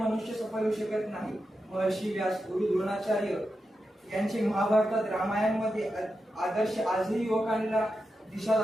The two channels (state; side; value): normal; both; correlation 0.89